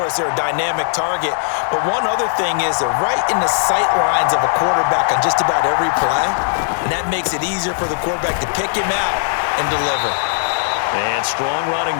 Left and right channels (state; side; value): silent; right; digital silence